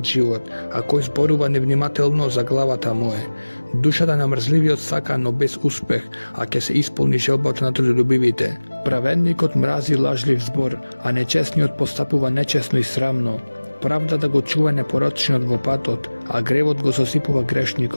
живот, а кој зборува невнимателно за главата му е. Душата на мрзливиот сака, но без успех, а ќе се исполни желбата на трудолюбивите. Праведникот мрази лажлив збор, а нечесниот постапува нечесно и срамно. Правдата го чува непорочниот во патот, а гревот го сосипува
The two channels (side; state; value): both; inverted; correlation -1.00